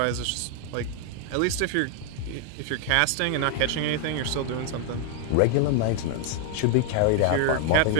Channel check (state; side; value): different; both; correlation 0.00